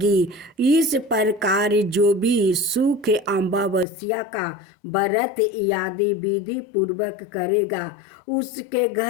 इस प्रकार जो भी सुख अमावस्या का व्रत आदि विधि पूर्वक करेगा, उसके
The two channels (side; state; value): right; drops out; at 3.9 s